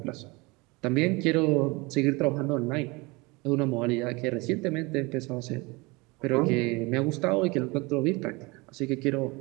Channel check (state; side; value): quieter; left; 25.1 dB